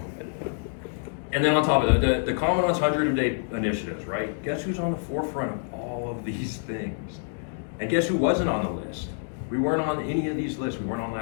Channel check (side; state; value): right; silent; digital silence